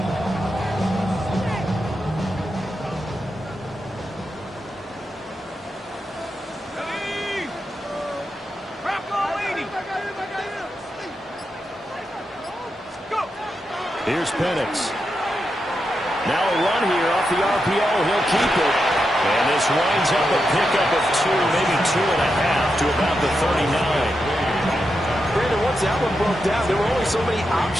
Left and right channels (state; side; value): normal; both; correlation 0.86